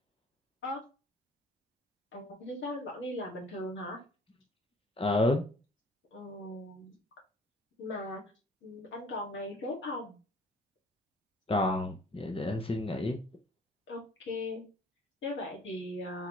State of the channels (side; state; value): both; normal; correlation 0.54